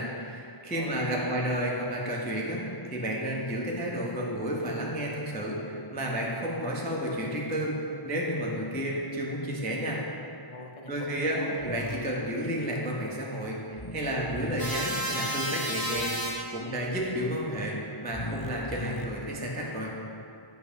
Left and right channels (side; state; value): right; late; 1.0 ms